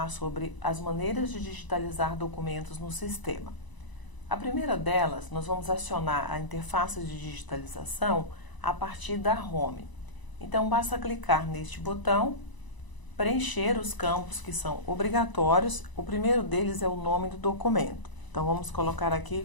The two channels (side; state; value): right; late; 1.0 ms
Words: sobre as maneiras de digitalizar documentos no sistema. A primeira delas, nós vamos acionar a interface de digitalização a partir da Home. Então basta clicar neste botão, preencher os campos que são obrigatórios. O primeiro deles é o nome do documento. Então vamos colocar aqui